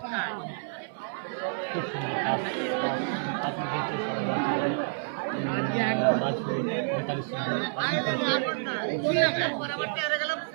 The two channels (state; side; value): silent; left; digital silence